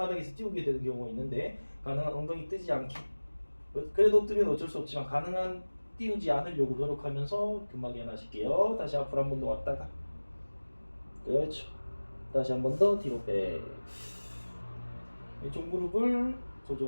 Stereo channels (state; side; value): inverted; both; correlation -1.00